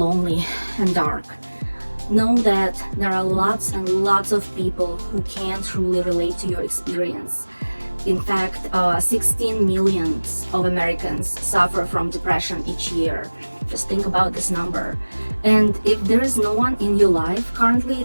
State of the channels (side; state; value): both; inverted; correlation -1.00